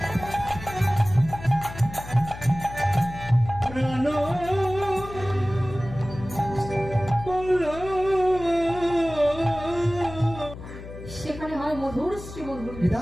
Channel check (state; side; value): noise; left; hum, 13 dB below the sound